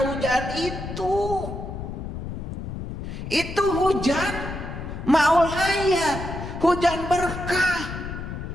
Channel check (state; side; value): noise; left; rumble, 7 dB below the sound